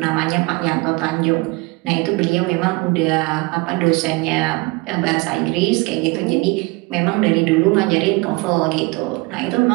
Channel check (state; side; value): quieter; left; 25.4 dB